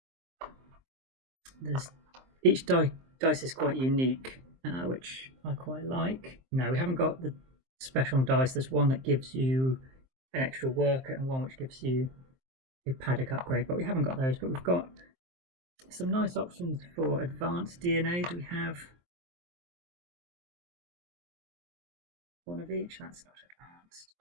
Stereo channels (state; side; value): late; left; 23 ms